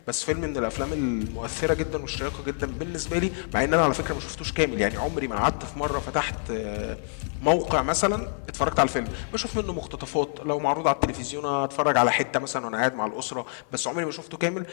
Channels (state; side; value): silent; right; 60 dB below the other